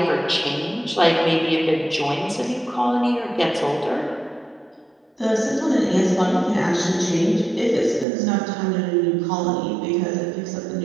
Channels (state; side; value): drops out; left; at 8.1 s